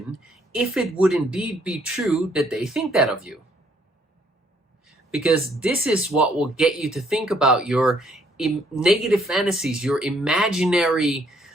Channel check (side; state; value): both; normal; correlation 0.67